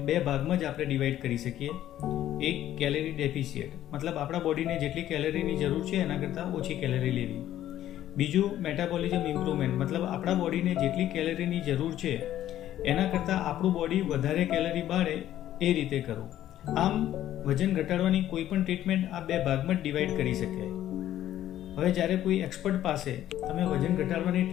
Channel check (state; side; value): quieter; right; 12.5 dB